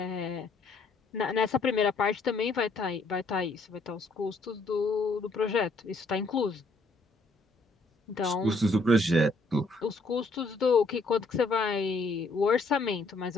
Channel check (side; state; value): right; quieter; 3.1 dB